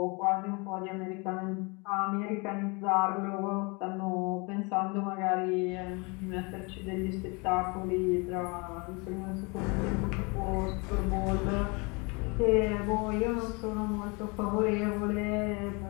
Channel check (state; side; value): quieter; right; 29.5 dB